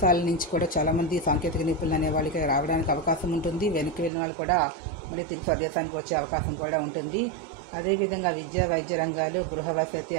నుంచి కూడా చాలామంది సాంకేతిక నిపుణులు అనే వాళ్ళకి రావడానికి అవకాశం ఉంటుంది. వెనక్కి వెళ్ళిన వాళ్ళు కూడా మళ్ళీ తిరిగి స్వదేశానికి వచ్చే అవకాశం కూడా ఉంటుంది. అదేవిధంగా విద్య, వైద్య రంగాలు, గృహ వసతి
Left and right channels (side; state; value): left; drops out; at 4.1 s